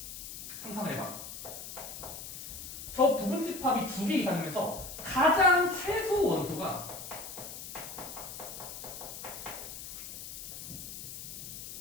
상상을 해봐. 저 부분 집합이 2개 이상이면서 가장 최소 원소가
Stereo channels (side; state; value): left; noise; hiss, 9 dB below the sound